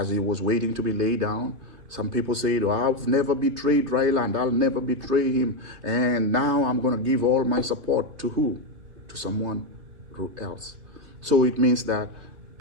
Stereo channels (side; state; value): left; late; 3.2 ms